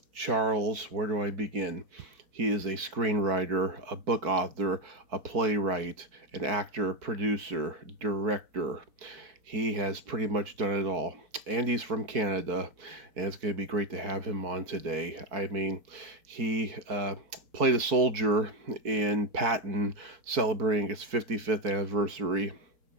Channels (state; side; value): late; left; 4.6 ms